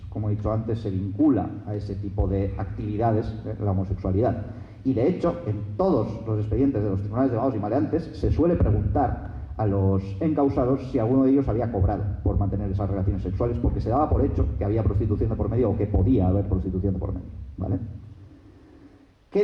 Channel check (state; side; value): identical; both; correlation 1.00